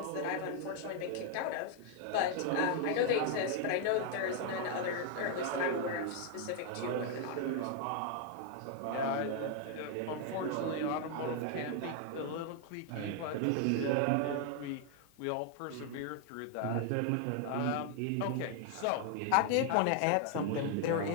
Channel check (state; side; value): different; both; correlation 0.00